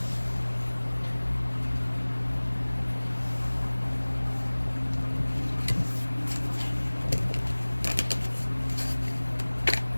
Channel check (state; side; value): inverted; both; correlation -1.00